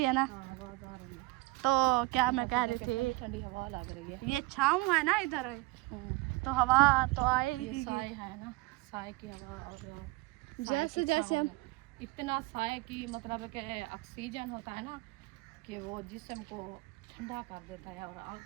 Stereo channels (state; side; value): quieter; left; 21.6 dB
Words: है ना। हाँ आवाज़ आ रही है। तो क्या मैं कह रही थी, ठंडी हवा लग रही है। ये छाँव है ना इधर, तो हवा तो ये आएगी। साए है ना, साए की हवा, और जैसे जैसे हम इतना साए की मतलब कि ऑक्सीजन होता है ना कि वो जिस्म को ठंडा कर देता है और